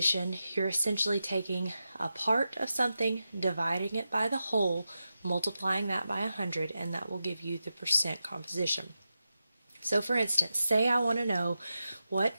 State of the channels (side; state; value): both; inverted; correlation -0.90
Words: you're essentially taking a part of something, dividing it by the whole, multiplying that by 100, and that will give you the percent composition. So for instance, say I want to know what